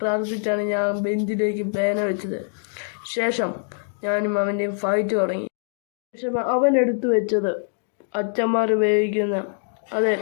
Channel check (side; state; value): right; silent; digital silence